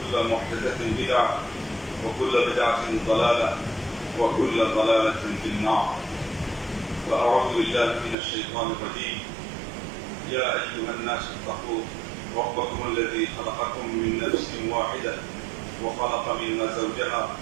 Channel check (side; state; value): left; drops out; at 8.2 s